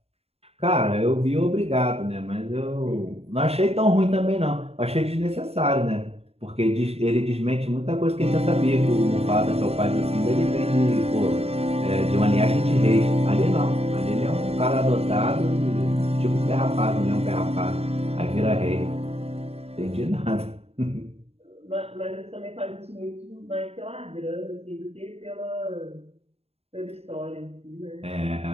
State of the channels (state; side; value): late; left; 0.29 ms